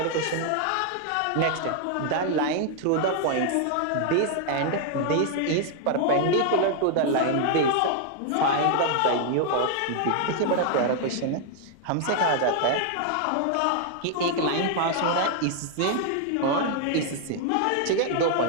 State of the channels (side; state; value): both; different; correlation 0.00